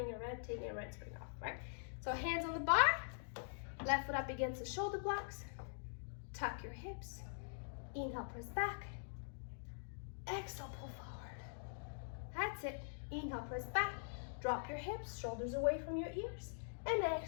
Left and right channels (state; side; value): silent; right; digital silence